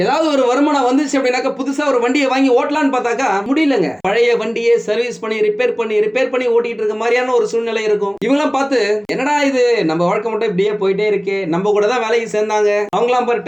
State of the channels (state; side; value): identical; both; correlation 1.00